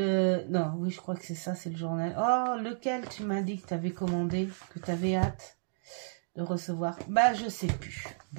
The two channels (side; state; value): left; silent; digital silence